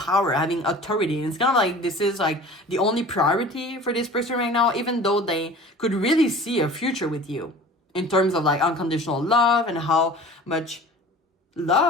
having authority. And it's kind of like this is like the only priority for this person right now, even though they could really see a future with you in terms of like unconditional love and how much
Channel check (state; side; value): normal; both; correlation 0.42